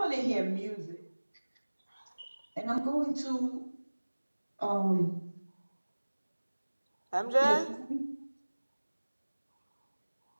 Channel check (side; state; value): both; inverted; correlation -1.00